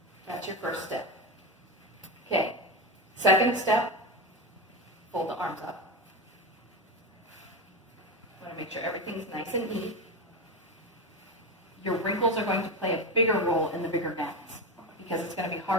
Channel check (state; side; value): normal; both; correlation 0.18